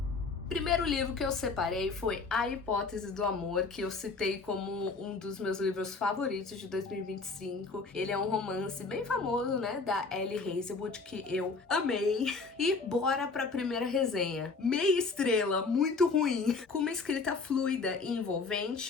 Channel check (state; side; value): quieter; right; 4.2 dB